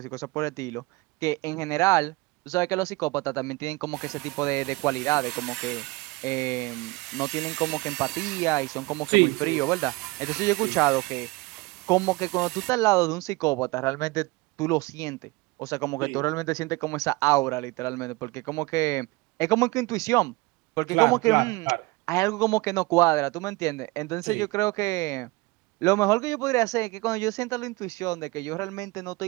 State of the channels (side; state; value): left; quieter; 23.2 dB